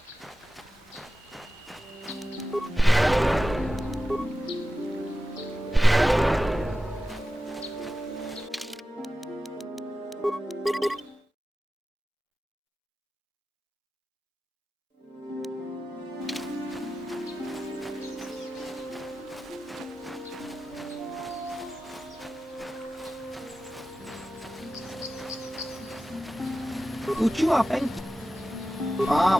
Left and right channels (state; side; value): normal; both; correlation 0.93